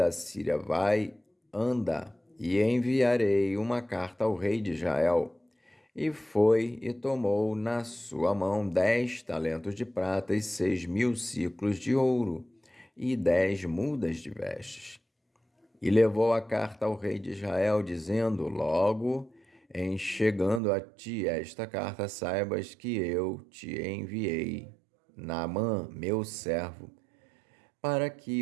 Síria: vai, anda, e enviarei uma carta ao rei de Israel. E foi e tomou na sua mão 10 talentos de prata e 6.000 siclos de ouro e 10 mudas de vestes. E levou a carta ao rei de Israel, dizendo: logo em chegando a ti esta carta, saibas que eu te enviei, Naamã, meu servo, para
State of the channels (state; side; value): drops out; left; at 20.6 s